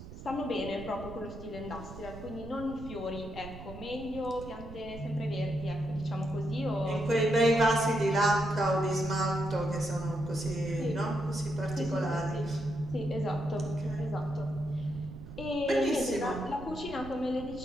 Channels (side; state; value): right; noise; rumble, 13 dB below the sound